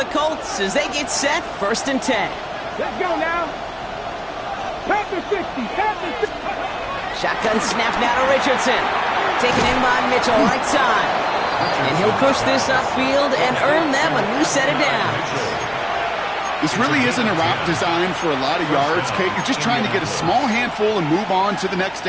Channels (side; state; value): both; identical; correlation 1.00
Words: Colts as they get set, 1st and 10. Let's go now. Panther 60, Panther 60. Shotgun snap now to Richardson. Taken in by Mitchell, right side. And he'll push this upfield and earn them a new set of downs. This really isn't a route designed for a lot of yards, Kate. You're just trying to get a small handful and move on to the next